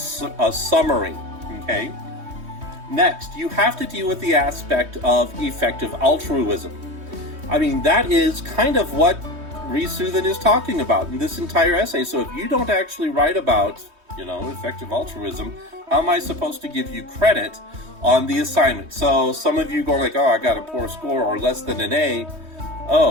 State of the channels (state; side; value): late; left; 3.2 ms